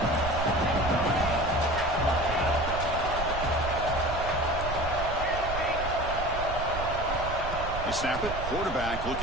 They snap it. Quarterback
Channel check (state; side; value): noise; right; rumble, 7 dB below the sound